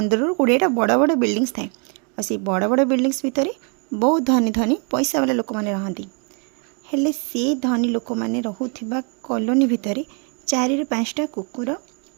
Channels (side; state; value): left; quieter; 36.9 dB